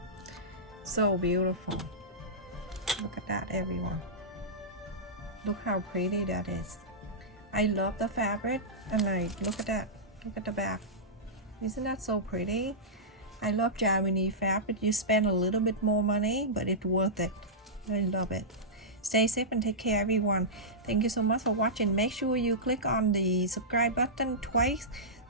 So beautiful. Look at that, everyone. Look how pretty that is. I love the fabric, and like, look at that. Look at the back. Isn't that so pretty? I love Janome fabric. You spend a little bit more money, but it's worth it. I love it. Stay safe and take care, everyone. Thank you so much for watching. Make sure you click on the subscribe button twice.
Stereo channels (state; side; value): normal; both; correlation -0.14